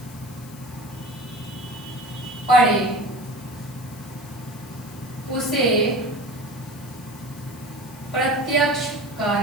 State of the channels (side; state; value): left; noise; hiss, 19 dB below the sound